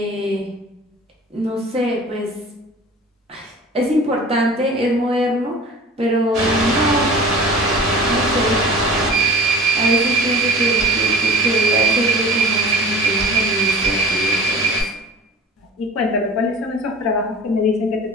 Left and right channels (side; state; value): both; normal; correlation 0.40